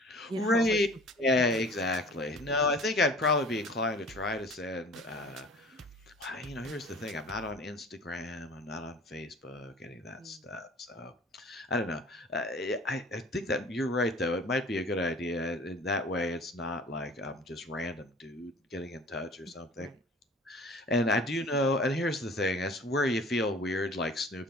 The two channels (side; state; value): both; normal; correlation 0.46